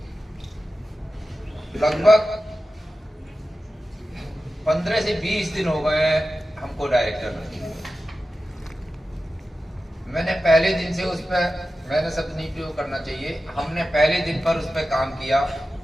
लगभग 15 से 20 दिन हो गए हमको डायरेक्टर में। मैंने पहले दिन से उस पर, मैंने शब्द नहीं प्रयोग करना चाहिए, हमने पहले दिन पर उस पर काम किया।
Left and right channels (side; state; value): both; normal; correlation 0.93